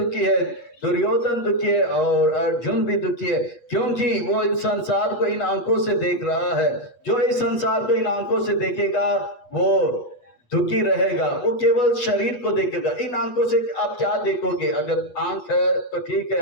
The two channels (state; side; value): late; right; 8.3 ms